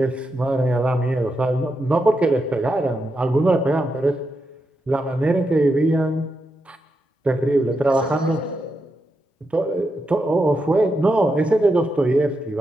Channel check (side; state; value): both; normal; correlation 0.85